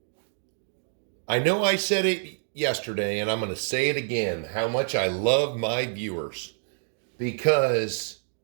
I know I said it yesterday, and I'm going to say it again, how much I love my viewers. Because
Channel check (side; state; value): left; silent; digital silence